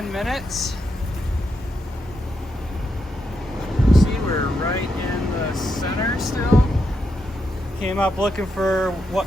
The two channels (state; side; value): normal; both; correlation 0.82